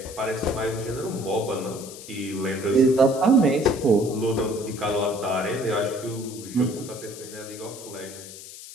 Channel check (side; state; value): left; noise; hiss, 14 dB below the sound